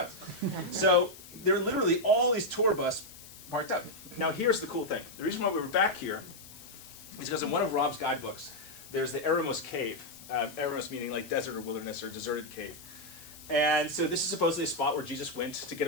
So there are literally all these tour bus parked up. Now here's the cool thing. The reason why we were back here is because in one of Rob's guidebooks, there's the Eremos Cave. Eremos meaning like desert or wilderness or deserted cave. And so this is supposedly a spot where Jesus went to get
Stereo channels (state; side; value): noise; left; hiss, 18 dB below the sound